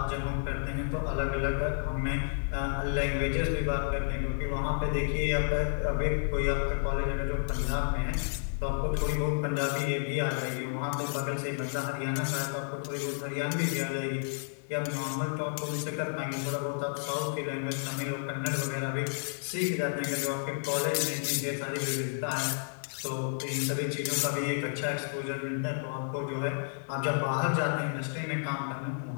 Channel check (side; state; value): right; silent; digital silence